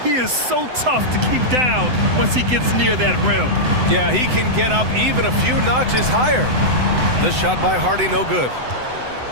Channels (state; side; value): late; left; 7.9 ms